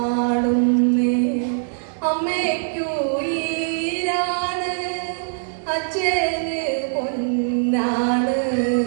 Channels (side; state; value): left; silent; digital silence